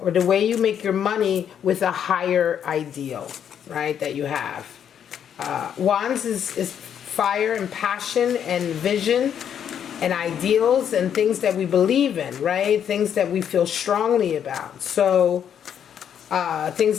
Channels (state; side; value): quieter; right; 8.8 dB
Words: the way you make your money with a higher ideal, right, that you have. Wands is fire and passion and vision and ideals and things that we believe in, right? Things that we feel strongly about. So things